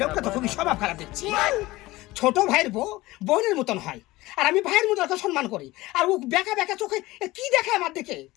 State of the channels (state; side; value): quieter; right; 19.1 dB